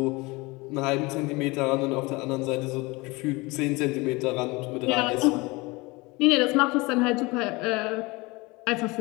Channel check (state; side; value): quieter; right; 24.1 dB